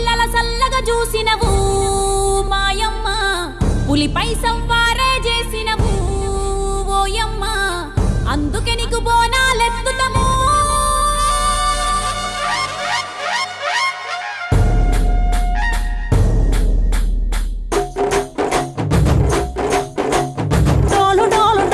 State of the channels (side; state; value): both; identical; correlation 1.00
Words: సల్లగా చూసినవు మాయమ్మ, పులిపై సవ్వారే చేసినవు ఓయమ్మ, అందుకే నీకు బోనాలెత్తుతము.